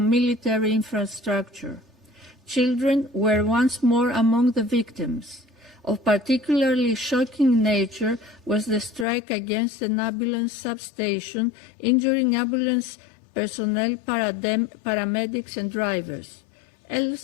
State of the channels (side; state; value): right; drops out; at 9.1 s